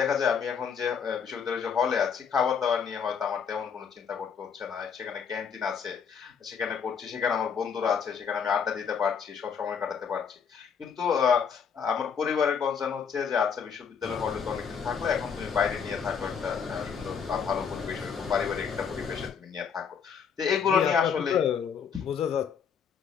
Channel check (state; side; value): quieter; right; 6.8 dB